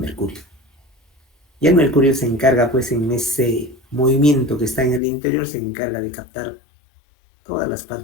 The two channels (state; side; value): drops out; right; at 5.0 s